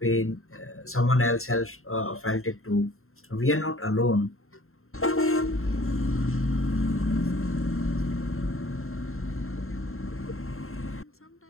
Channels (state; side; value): late; right; 0.62 ms